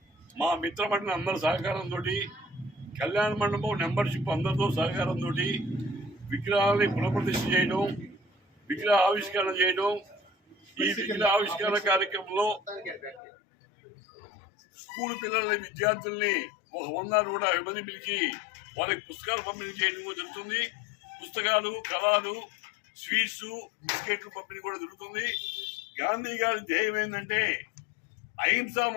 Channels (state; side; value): drops out; right; at 13.2 s